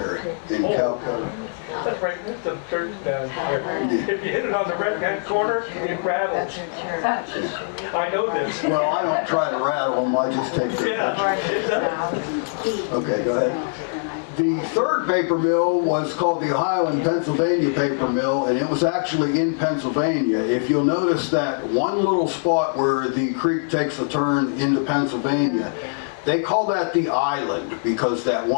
in Calcutta. That's right, that's the church down there. If you hit it on the right-hand corner, it rattles. I know this. Well, I don't try to rattle them, I just take their pictures. Yeah, it does. Okay, go ahead. The third paper mill was called the Ohio and Pennsylvania Paper Mill, and it was actually in Pennsylvania. If you'll notice that one little spot where the creek takes a turn into Pennsylvania, they call that the island because that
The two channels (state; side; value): silent; right; 61 dB below the other